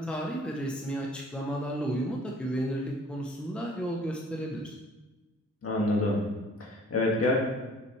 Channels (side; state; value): both; normal; correlation 0.54